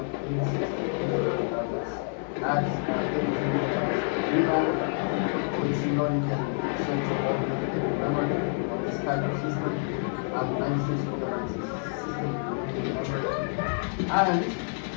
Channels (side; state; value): right; silent; 59 dB below the other